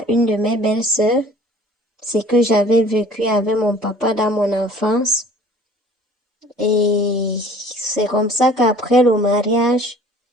une de mes belles-sœurs. C'est que j'avais vécu avec mon papa dans mon enfance. Et c'est comme ça qu'après le mariage,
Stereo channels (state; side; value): normal; both; correlation 0.50